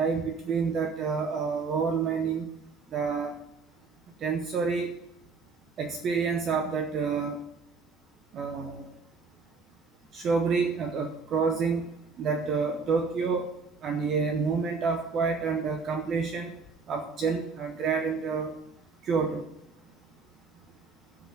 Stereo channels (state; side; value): quieter; left; 4.9 dB